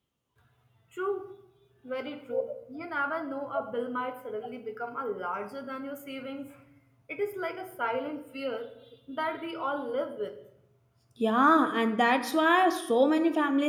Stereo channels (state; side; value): identical; both; correlation 1.00